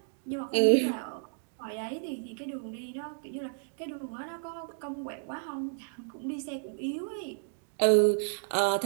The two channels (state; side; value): silent; left; digital silence